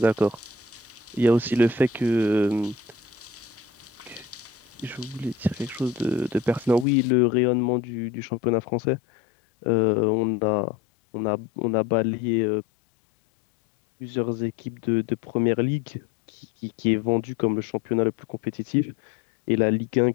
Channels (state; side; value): drops out; right; at 6.9 s